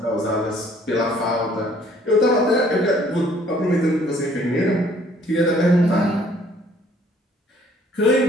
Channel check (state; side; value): normal; both; correlation 0.59